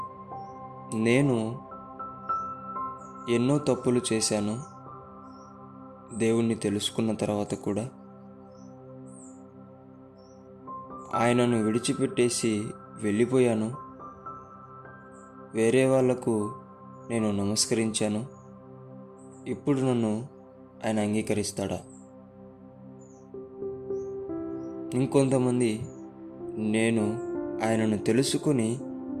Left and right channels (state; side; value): identical; both; correlation 1.00